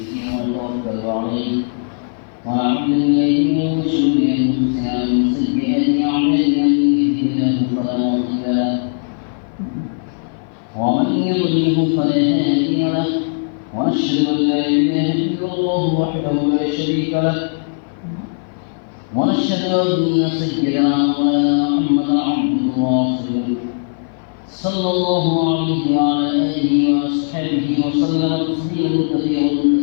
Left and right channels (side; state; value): right; silent; 57 dB below the other